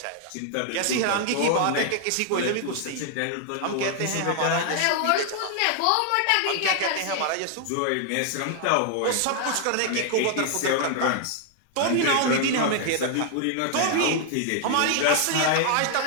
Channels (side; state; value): both; different; correlation 0.00